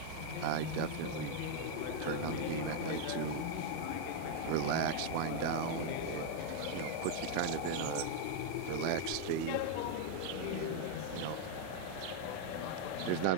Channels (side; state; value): both; different; correlation 0.00